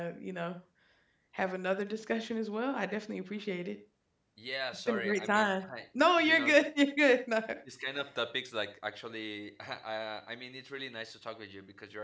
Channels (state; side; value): identical; both; correlation 1.00